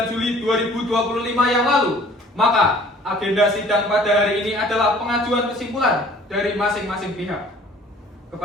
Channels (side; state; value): both; normal; correlation 0.52